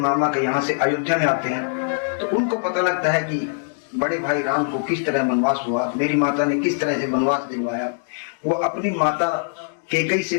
के यहाँ से अयोध्या में आते हैं तो उनको पता लगता है कि बड़े भाई राम को किस तरह वनवास हुआ, मेरी माता ने किस तरह से वनवास दिलवाया। वो अपनी माता कैकेयी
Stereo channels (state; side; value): silent; right; digital silence